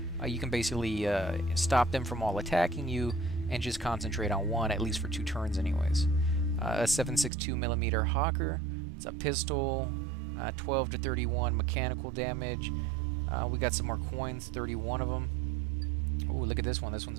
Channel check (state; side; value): drops out; left; at 7.3 s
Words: you can basically stop them from all attacking you and just concentrate on one, at least for 2 turns anyways. A 7.62mm Hawker. It's a pistol, 12 to 31 mechanical damage. We got some more coins, 31 of them. Oh, look at this one. This